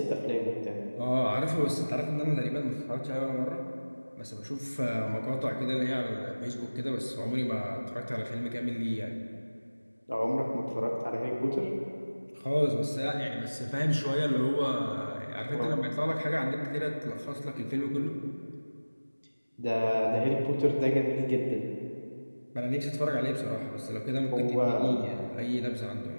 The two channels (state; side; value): inverted; both; correlation -1.00